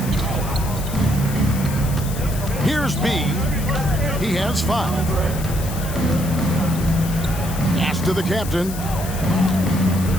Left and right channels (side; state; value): left; noise; hiss, 12 dB below the sound